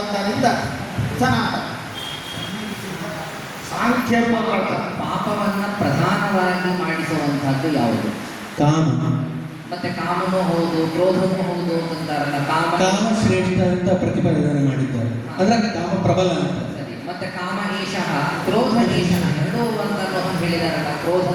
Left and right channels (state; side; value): identical; both; correlation 1.00